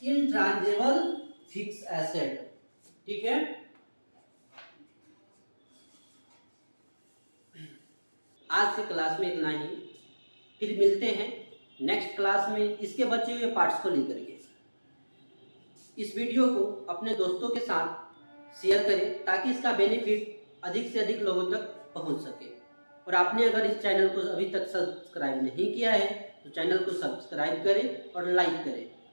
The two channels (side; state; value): both; inverted; correlation -1.00